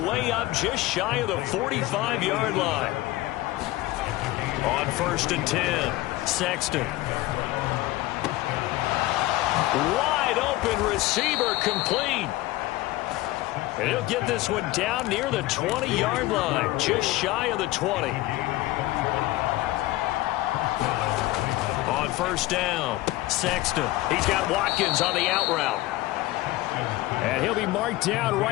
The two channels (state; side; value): quieter; right; 17.8 dB